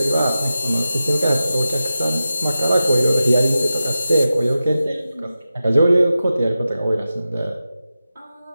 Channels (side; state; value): both; inverted; correlation -0.93